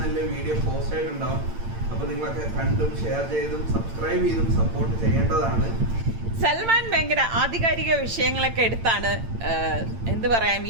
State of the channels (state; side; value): late; left; 8.8 ms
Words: വീഡിയോ പോസ്റ്റ് ആയിട്ടുണ്ടാവും. അപ്പൊ നിങ്ങളൊക്കെ കണ്ടും ഷെയർ ചെയ്തും സബ്സ്ക്രൈബ് ചെയ്തും സപ്പോർട്ട് ചെയ്യേണ്ടതാണ്. സൽമാൻ ഭയങ്കര ആധികാരിക വിഷയങ്ങളൊക്കെ എടുത്താണ് എന്ത് പറയാൻ